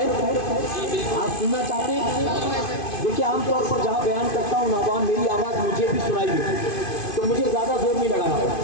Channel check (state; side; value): late; right; 2.5 ms